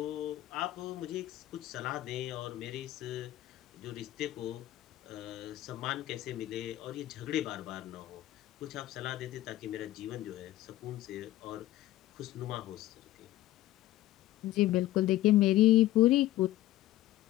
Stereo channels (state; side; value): quieter; right; 15.0 dB